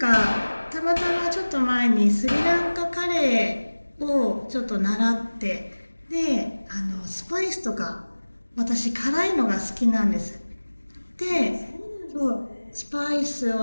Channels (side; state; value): both; inverted; correlation -1.00